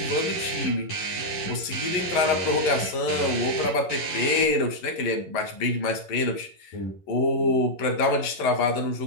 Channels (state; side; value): late; right; 11 ms